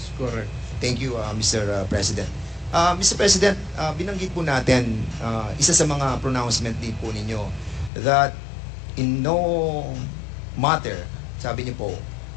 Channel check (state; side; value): drops out; right; at 7.9 s